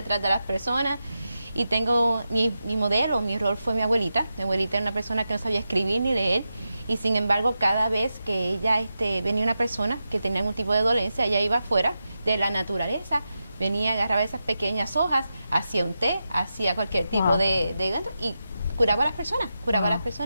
de las personas. Y tengo mi modelo, mi rol fue mi abuelita. Mi abuelita era una persona que no sabía escribir ni leer. Y sin embargo, cada vez que ella venía una persona que tenía algún tipo de dolencia, ella iba afuera de la naturaleza, venía, agarraba esas pequeñas hojas, hacía un té, hacía cualquier tipo de y curaba a las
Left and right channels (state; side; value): inverted; both; correlation -0.89